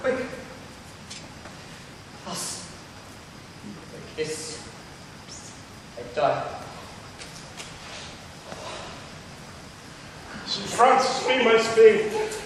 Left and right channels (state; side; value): identical; both; correlation 1.00